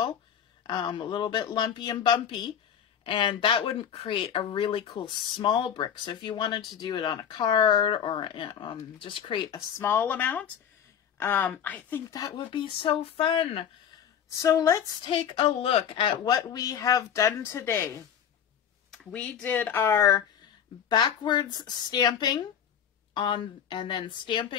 a little bit lumpy and bumpy, and that would create a really cool small brick. So if you wanted to do it on a card or just create a small amount, I think that would be so fun. So let's take a look at what we have done today. We did our backwards stamping on, and then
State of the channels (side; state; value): right; quieter; 8.7 dB